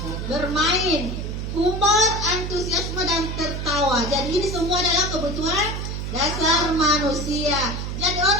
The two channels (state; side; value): noise; right; hum, 4 dB below the sound